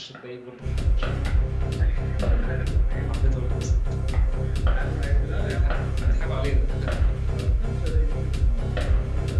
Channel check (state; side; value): identical; both; correlation 1.00